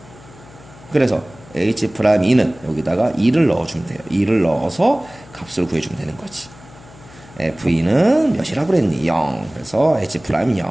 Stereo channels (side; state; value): left; noise; hum, 22 dB below the sound